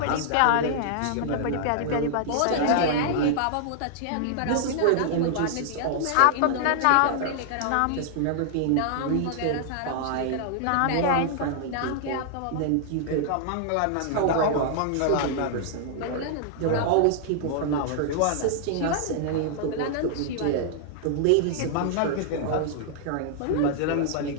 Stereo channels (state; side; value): different; both; correlation -0.01